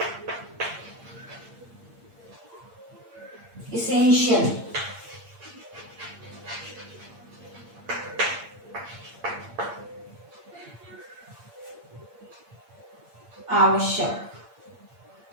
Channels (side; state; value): left; late; 8.7 ms